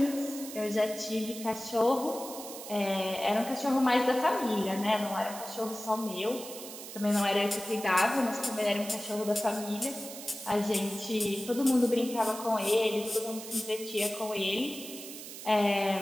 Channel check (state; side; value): noise; right; hiss, 11 dB below the sound